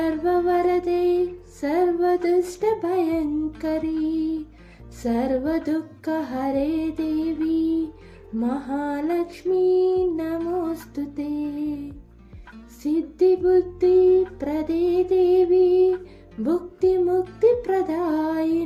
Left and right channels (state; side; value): identical; both; correlation 1.00